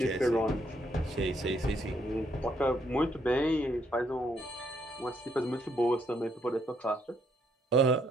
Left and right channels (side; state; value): both; normal; correlation 0.72